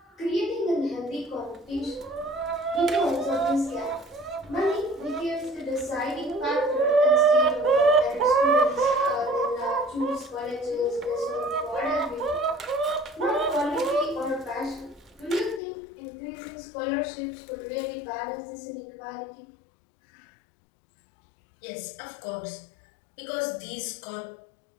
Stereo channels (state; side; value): drops out; right; at 15.6 s